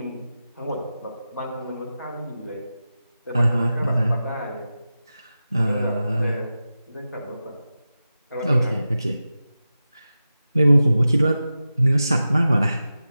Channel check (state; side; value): inverted; both; correlation -0.93